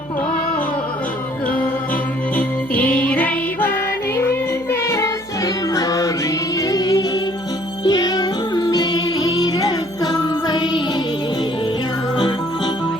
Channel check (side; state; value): right; noise; hum, 23 dB below the sound